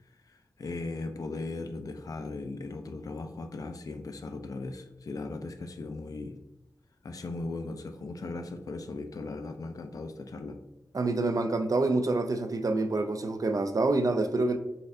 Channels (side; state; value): both; normal; correlation 0.84